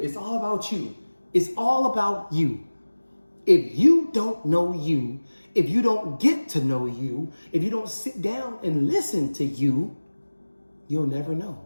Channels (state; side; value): inverted; both; correlation -1.00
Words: It's all about you. It's all about you. If you don't know you, if you don't get to know you, if you don't sit down and listen to you, you'll never know.